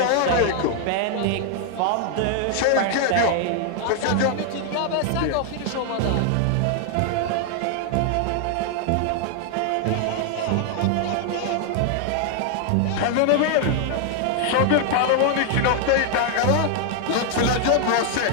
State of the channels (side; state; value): both; different; correlation 0.00